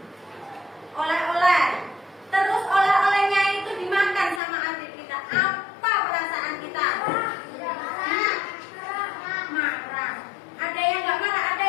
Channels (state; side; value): drops out; right; at 4.4 s